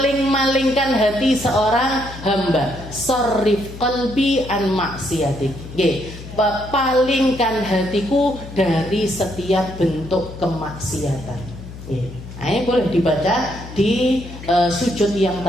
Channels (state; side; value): noise; left; hum, 14 dB below the sound